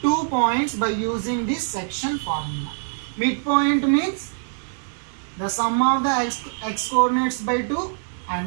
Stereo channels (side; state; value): left; silent; digital silence